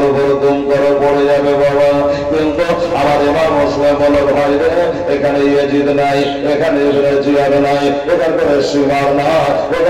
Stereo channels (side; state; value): both; identical; correlation 1.00